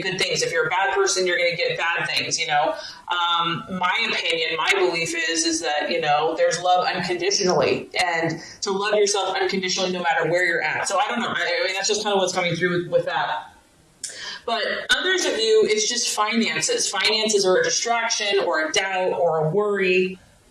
good things. If you're a bad person, you're going to get bad things, My opinion, my belief is that, there's love unconditionally, and to love yourself unconditionally no matter where you're at. So I don't know. I mean, that's just kind of what's coming through with that. But others of you, it's just finances. Finances are a distraction or a doubt or a worry.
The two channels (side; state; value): both; identical; correlation 1.00